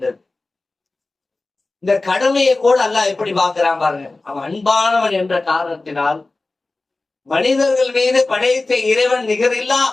இந்த கடமையை கூட அல்லாஹ் எப்படி பார்க்கிறான் பாருங்க. அவன் அன்பானவன் என்ற காரணத்தினால் மனிதர்கள் மீது படைத்த இறைவன் நிகரில்லா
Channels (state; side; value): quieter; right; 3.3 dB